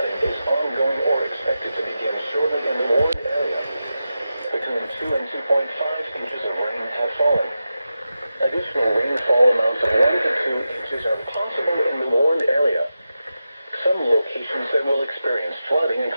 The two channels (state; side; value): inverted; both; correlation -0.91